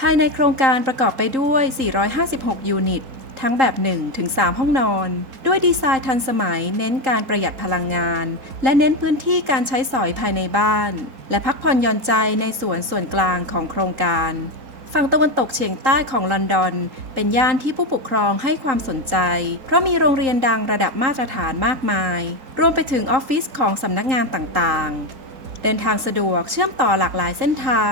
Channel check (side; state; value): left; late; 3.8 ms